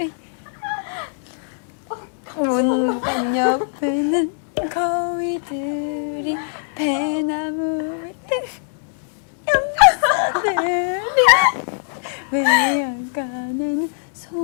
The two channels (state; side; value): silent; right; digital silence